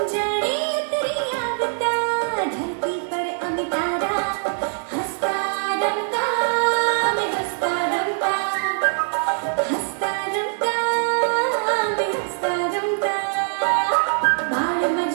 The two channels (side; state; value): left; silent; digital silence